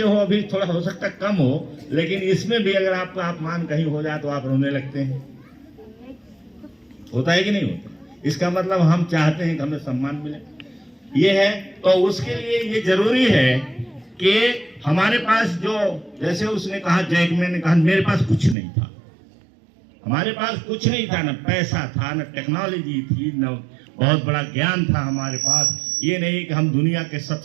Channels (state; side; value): drops out; left; at 18.6 s